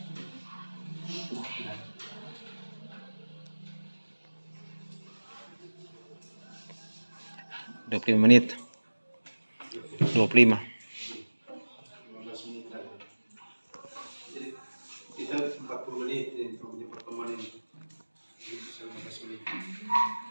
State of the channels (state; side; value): inverted; both; correlation -1.00